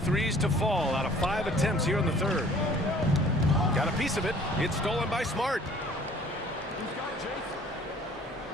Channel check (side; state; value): both; normal; correlation 0.53